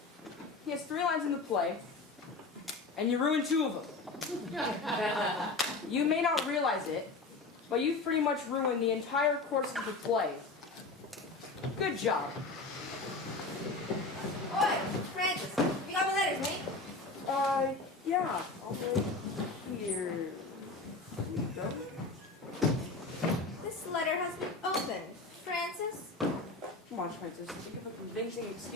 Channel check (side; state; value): right; quieter; 3.6 dB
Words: He has 3 lines in the play, and you ruined 2 of them. You may not realize it, but you've pretty much ruined the entire course of the play. Good job. Oi, Francis, you got my letters, mate? Yeah, I'll go here. Here you go. This letter has been opened. Francis? Come on, Francis, think of a convincing